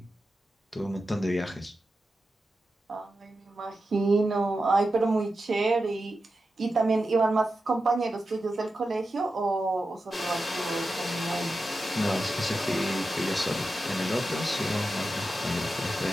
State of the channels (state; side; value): normal; both; correlation 0.91